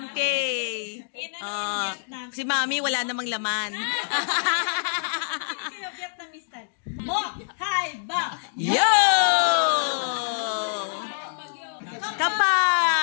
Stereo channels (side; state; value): right; silent; digital silence